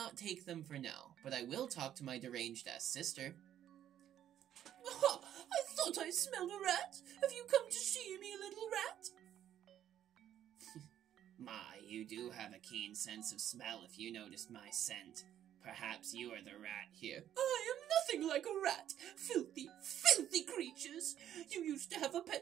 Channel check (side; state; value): left; quieter; 10.9 dB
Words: take them for now, but I will talk to my deranged-ass sister. Aha! I thought I smelled a rat. Have you come to see me, little rat? My, you do have a keen sense of smell if you noticed my scent. Perhaps you are the rat here. I am nothing like a rat. Filthy, filthy creatures. You used to have a